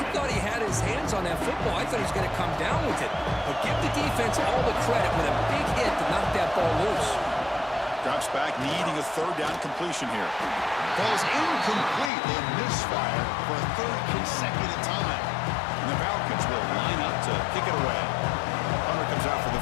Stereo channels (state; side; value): drops out; right; at 12.1 s